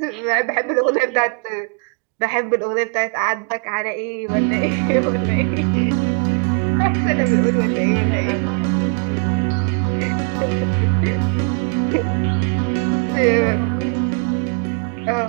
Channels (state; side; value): quieter; left; 37.7 dB